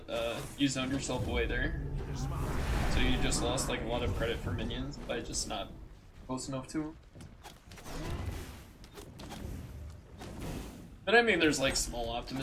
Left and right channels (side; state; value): both; identical; correlation 1.00